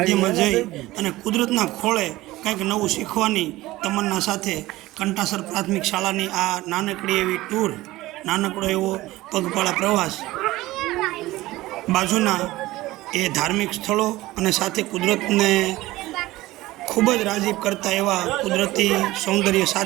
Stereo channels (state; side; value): quieter; left; 17.9 dB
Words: જઈ અને કુદરતના ખોળે કંઈક નવું શીખવાની તમન્ના સાથે કંટાસર પ્રાથમિક શાળાની આ નાનકડી એવી ટૂર, નાનકડો એવો પગપાળા પ્રવાસ, બાજુના એ ધાર્મિક સ્થળો અને સાથે કુદરતને ખૂબ જ રાજીપ કરતા એવા કુદરતી સૌંદર્ય